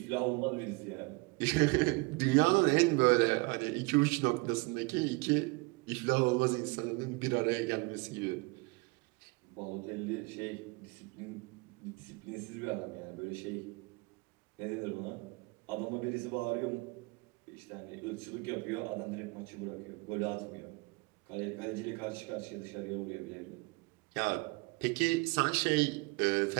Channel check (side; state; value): left; quieter; 26.3 dB